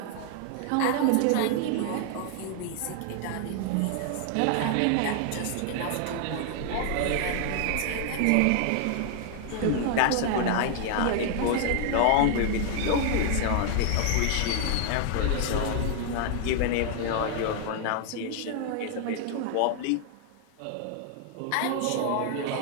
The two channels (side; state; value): both; different; correlation 0.00